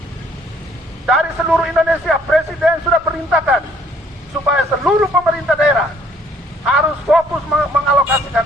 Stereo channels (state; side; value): normal; both; correlation 0.62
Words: Dari seluruh Indonesia, Presiden sudah perintahkan supaya seluruh pemerintah daerah harus fokus